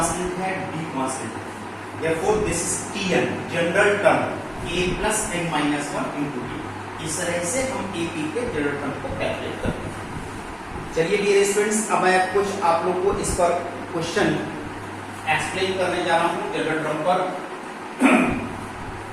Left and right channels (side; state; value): both; identical; correlation 1.00